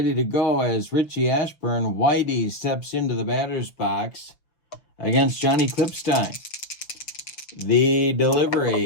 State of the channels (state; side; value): late; right; 6.4 ms